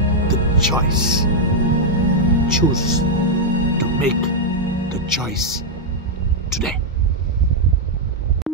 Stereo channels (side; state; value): both; normal; correlation -0.02